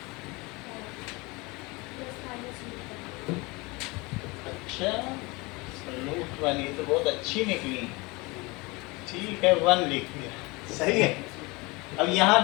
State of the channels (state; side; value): quieter; right; 25.1 dB